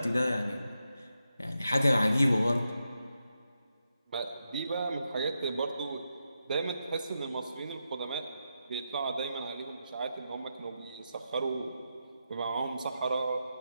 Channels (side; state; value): both; inverted; correlation -0.87